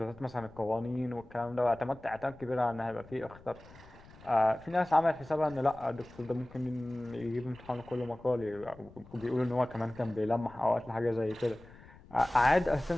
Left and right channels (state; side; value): noise; left; rumble, 21 dB below the sound